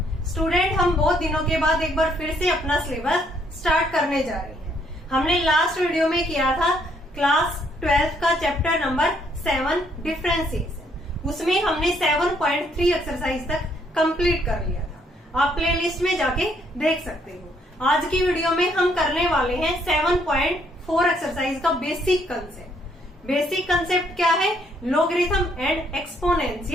Student, हम बहुत दिनों के बाद एक बार फिर से अपना सिलेबस स्टार्ट करने जा रहे हैं। हमने लास्ट वीडियो में किया था क्लास 12 का चैप्टर नंबर 7 डिफरेंशिएशन। उसमें हमने 7.3 एक्सरसाइज तक कंप्लीट कर लिया था। आप प्लेलिस्ट में जाके देख सकते हो। आज की वीडियो में हम करने वाले हैं 7.4 एक्सरसाइज का बेसिक कंसेप्ट। बेसिक कंसेप्ट क्या है? Logarithm and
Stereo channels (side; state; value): both; normal; correlation 0.69